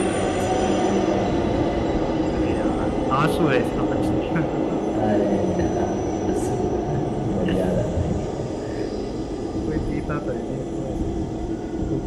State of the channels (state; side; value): identical; both; correlation 1.00